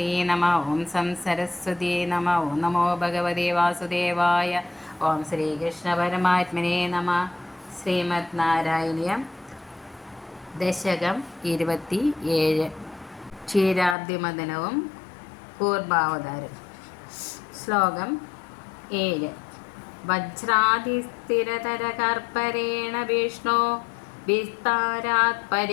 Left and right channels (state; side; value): drops out; right; at 14.0 s